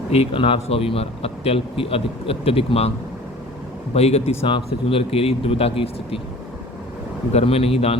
एक अनार 100 बीमार, अत्यल्प की अत्यधिक मांग। बहीगति सांप से चुंदर केरी, दुविधा की स्थिति। घर में नहीं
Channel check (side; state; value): both; normal; correlation 0.45